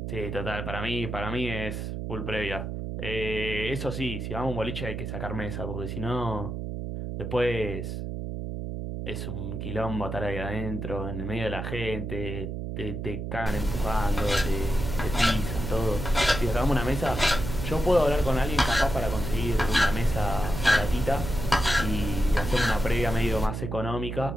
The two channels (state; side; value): noise; right; hum, 5 dB below the sound